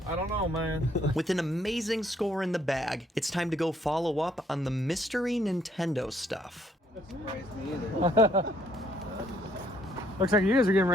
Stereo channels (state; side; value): normal; both; correlation 0.68